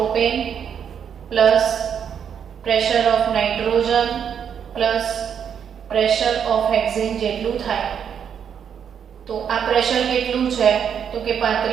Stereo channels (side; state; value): left; quieter; 8.0 dB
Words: plus pressure of nitrogen plus pressure of hexane જેટલું થાય. તો આ પ્રેશર કેટલું છે? તો કે